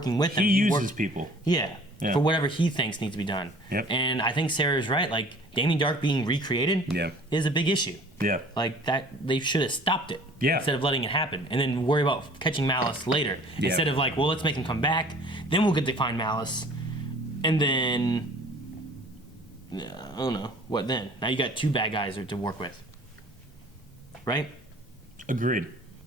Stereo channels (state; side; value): normal; both; correlation 0.49